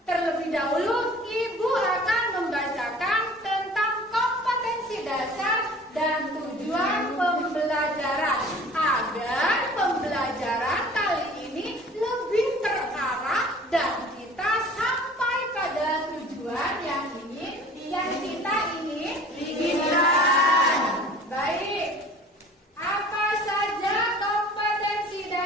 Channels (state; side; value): normal; both; correlation 0.46